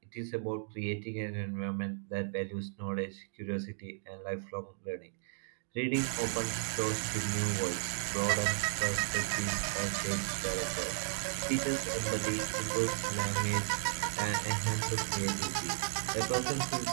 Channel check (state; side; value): silent; left; digital silence